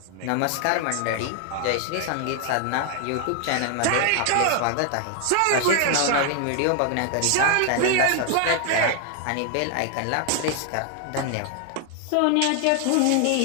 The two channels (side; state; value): both; different; correlation 0.00